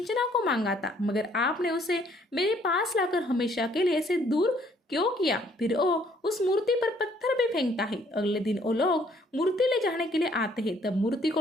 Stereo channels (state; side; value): normal; both; correlation 0.63